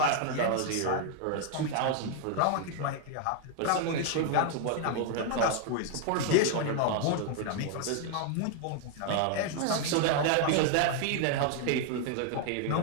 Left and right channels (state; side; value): different; both; correlation 0.00